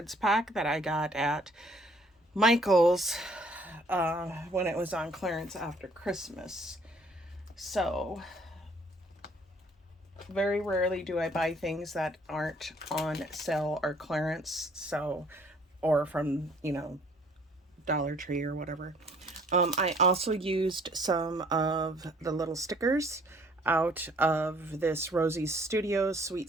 pack that I got at Michael's when it was on clearance after Christmas. So very rarely do I buy things that aren't on sale or clearance, so, or from, Dollar Tree or whatever. I also used some of the little stickers out of this Rosie's Studios Sweet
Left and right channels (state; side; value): normal; both; correlation 0.59